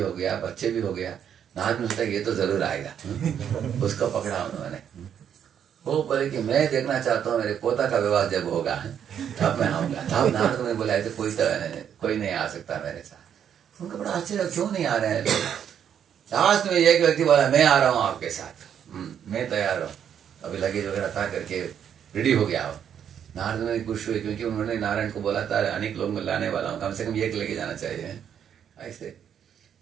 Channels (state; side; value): quieter; left; 8.8 dB